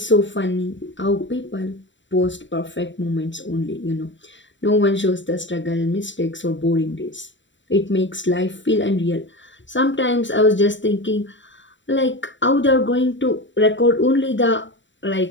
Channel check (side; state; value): right; late; 0.54 ms